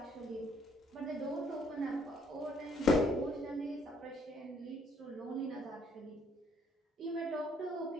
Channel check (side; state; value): both; normal; correlation 0.66